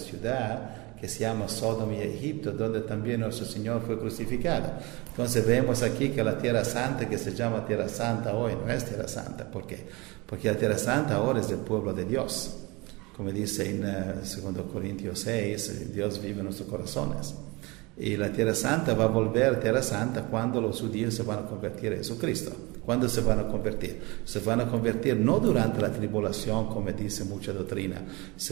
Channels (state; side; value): quieter; left; 25.0 dB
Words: que se llama Sodoma y Egipto, donde también nuestro Señor fue crucificado. Entonces vemos aquí que la Tierra Santa, que se llama Tierra Santa hoy, no es Tierra Santa. ¿Por qué? Porque la Tierra Santa ahora es del pueblo de Dios. Como dice en 2 Corintios 6, Dios vive en nuestros corazones. Y la Tierra Santa va a volver Tierra Santa cuando los judíos se van a convertir a Jesucristo. ¿Cuándo se van a convertir? Se van a convertir no durante la tribulación, como dice mucha doctrina.